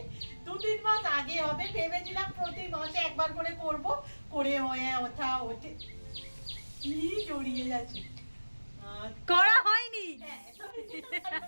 2-3 মাস আগে হবে। ভেবেছিলাম প্রতি মাসে একবার করে করব, করে হয়ে ওঠে কি জড়িয়ে যাচ্ছে। করা হয়নি। হ্যাঁ,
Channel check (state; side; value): inverted; both; correlation -1.00